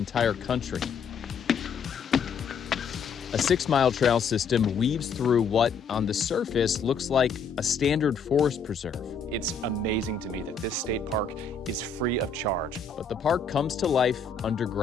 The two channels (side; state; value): right; quieter; 5.4 dB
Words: country. A 6-mile trail system weaves through what, on the surface, looks like a standard forest preserve. It's amazing to me that this state park is free of charge. But the park comes to life